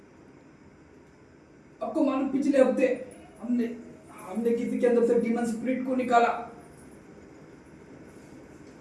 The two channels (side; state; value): both; identical; correlation 1.00